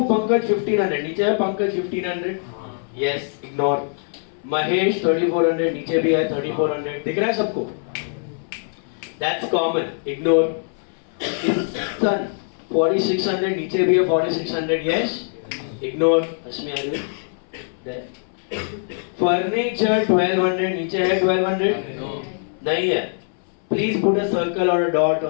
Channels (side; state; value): right; silent; 62 dB below the other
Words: पंकज 1,500, नीचे है पंकज 1,500, यस इग्नोर। महेश 3,400, नीचे भी है 3,400, दिख रहा है सबको? That's common, ignore. सन 4,600, नीचे भी है 4,600, यस इग्नोर। अस्मी फर्नीचर 1200 नीचे है 1200 नहीं है. प्लीज पुट अ सर्कल और अ डॉट